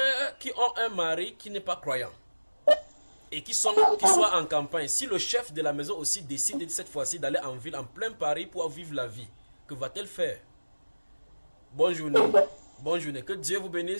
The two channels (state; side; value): inverted; both; correlation -1.00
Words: qui ont un mari qui n'est pas croyant et qui soient en campagne, si le chef de la maison aussi décide cette fois-ci d'aller en ville, en plein Paris pour vivre la vie, que va-t-elle faire? Bonne journée. Bonne journée. Que Dieu vous